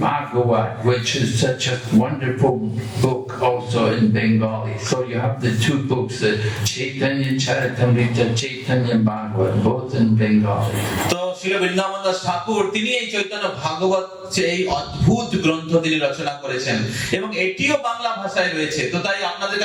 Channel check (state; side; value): identical; both; correlation 1.00